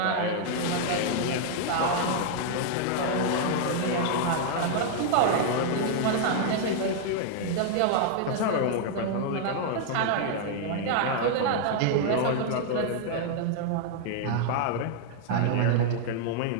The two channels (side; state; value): both; different; correlation -0.01